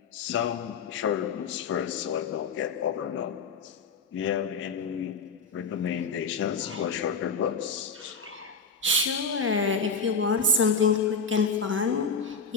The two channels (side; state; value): right; quieter; 4.4 dB